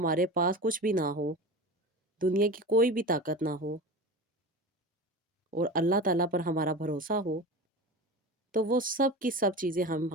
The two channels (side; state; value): both; normal; correlation 0.31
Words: पास कुछ भी ना हो, दुनिया की कोई भी ताकत ना हो और अल्लाह ताला पर हमारा भरोसा हो, तो वो सब की सब चीज़ें हम